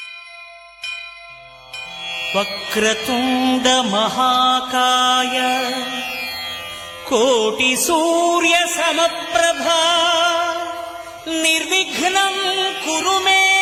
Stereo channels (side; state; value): both; identical; correlation 1.00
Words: Vakratunda మహాకాయ కోటి సూర్య సమప్రభా నిర్విఘ్నం కురు మే